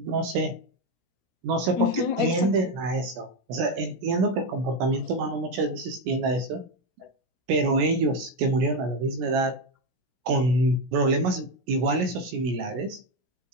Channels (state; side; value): late; left; 16 ms